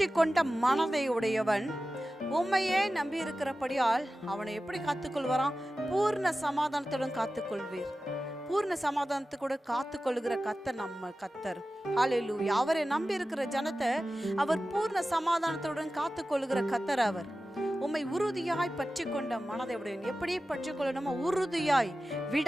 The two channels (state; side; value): normal; both; correlation 0.95